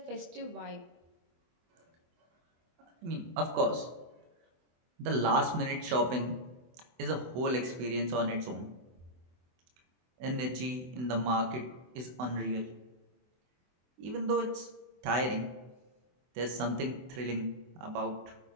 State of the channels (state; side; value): late; left; 24 ms